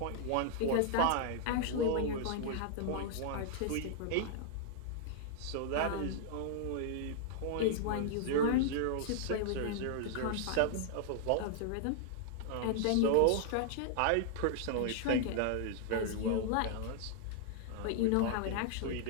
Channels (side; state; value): both; different; correlation -0.01